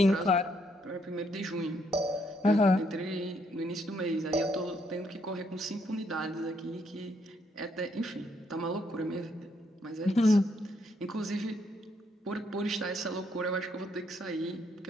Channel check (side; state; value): both; normal; correlation 0.73